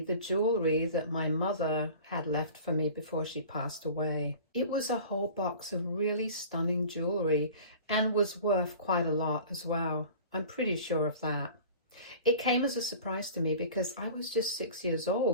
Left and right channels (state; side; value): inverted; both; correlation -0.41